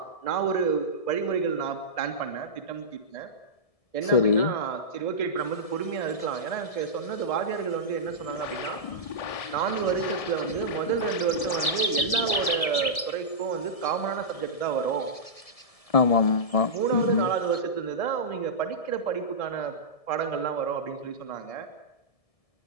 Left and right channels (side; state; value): right; late; 1.7 ms